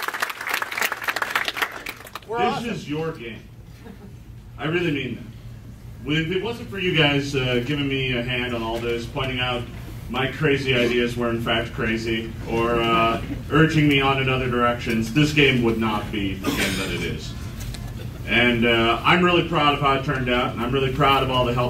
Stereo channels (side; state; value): both; identical; correlation 1.00